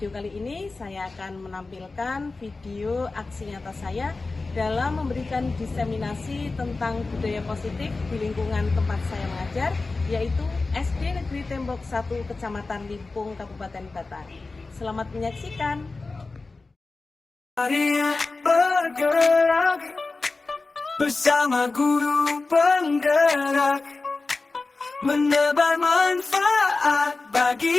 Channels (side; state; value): right; quieter; 3.7 dB